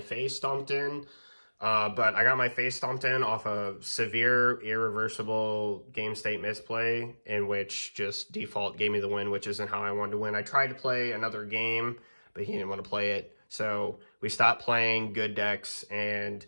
face stomped in. But I got my face stomped in off a severe, irreversible game state misplay, in which just default gave me the win, which isn't how I wanted to win. I tried to play another game, but he didn't want to play it. So we stopped playing good decks, and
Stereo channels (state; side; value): inverted; both; correlation -1.00